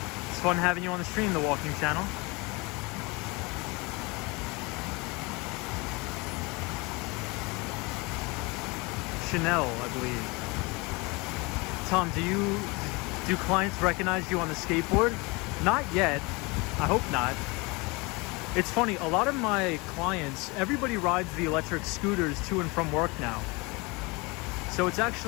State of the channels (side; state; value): right; quieter; 26.4 dB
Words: It's fun having you on the stream, the Walking Channel. Chanel, I believe. Tom, do clients recognize you on the skateboard? Not yet. I hope not. It's funny, a lot of my clients, everybody rides the electric scooters to and from work now. So it's